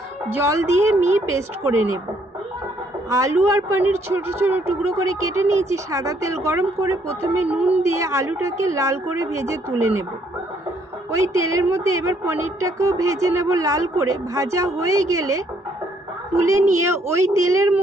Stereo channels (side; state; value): both; normal; correlation 0.68